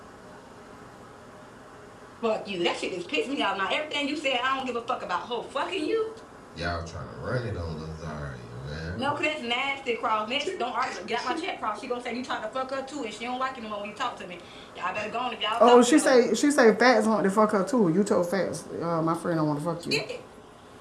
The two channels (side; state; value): both; identical; correlation 1.00